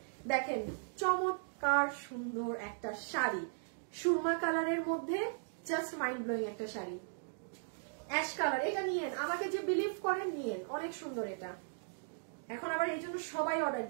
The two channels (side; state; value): left; silent; digital silence